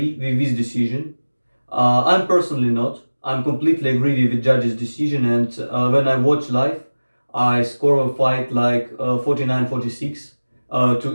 with this decision. I'm personally not. I'm completely agree with the judge's decision, and when I watch live, I score a fight like 49-46, too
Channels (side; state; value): both; inverted; correlation -1.00